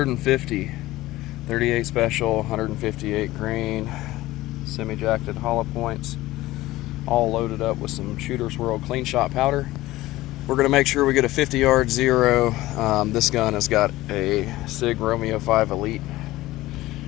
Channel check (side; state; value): right; quieter; 17.4 dB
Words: 38 special, 158 grain, semi-jacketed hollow points, all loaded up with some Shooter's World clean shot powder. We're going to make sure we get a 50-yard zero. This gun has got a Sig Romeo5 Elite